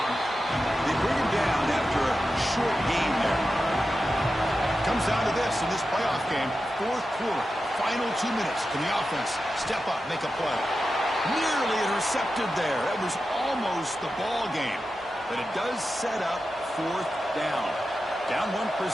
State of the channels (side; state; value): both; normal; correlation 0.91